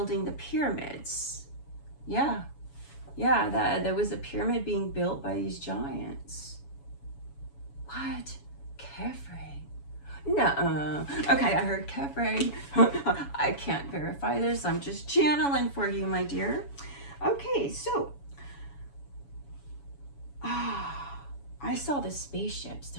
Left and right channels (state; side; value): late; right; 7.1 ms